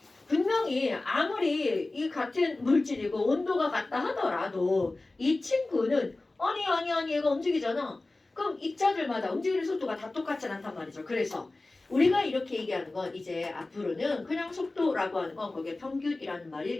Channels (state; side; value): quieter; right; 3.1 dB